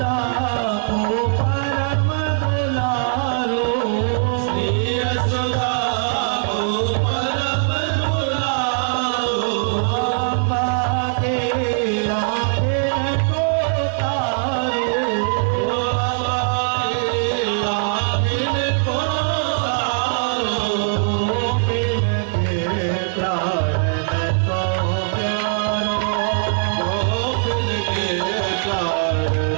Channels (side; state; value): left; silent; 64 dB below the other